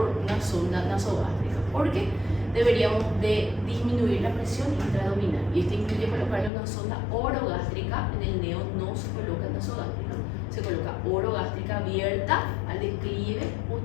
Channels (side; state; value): right; drops out; at 6.5 s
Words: una sonda nasogástrica, porque deberíamos de disminuir la presión intraabdominal, y esto incluye colocarle una sonda orogástrica. En el neo no se coloca nasogástrica, se coloca orogástrica abierta al declive,